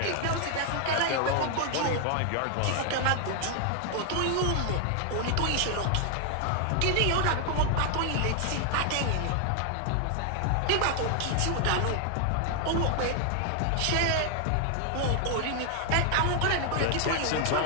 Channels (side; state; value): both; different; correlation 0.00